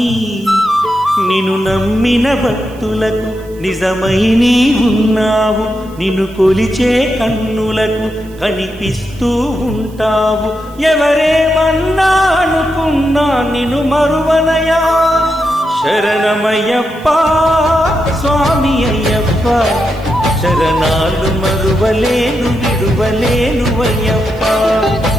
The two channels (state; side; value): noise; right; hiss, 27 dB below the sound